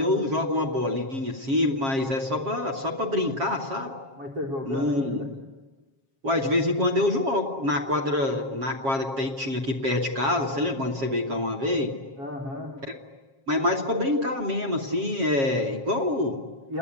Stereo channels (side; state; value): left; late; 7.4 ms